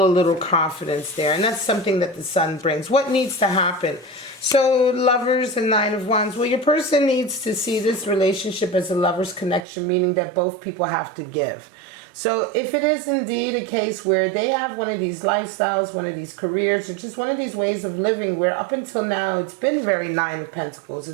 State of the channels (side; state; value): left; drops out; at 9.7 s